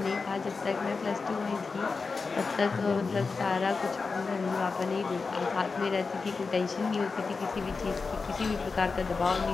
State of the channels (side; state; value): right; quieter; 4.5 dB